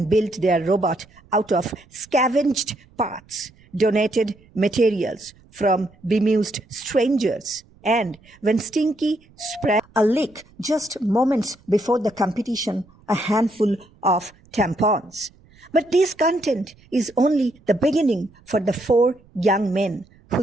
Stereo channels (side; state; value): right; noise; rumble, 29 dB below the sound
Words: built their robot out of scavenged parts, donated materials from bemused strangers, and when Stinky spread a leak just moments before the competition, a handful of tampons. But this content is only the beginning for the 4 young men